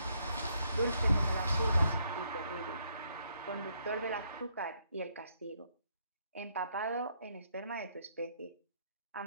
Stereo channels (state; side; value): inverted; both; correlation -0.72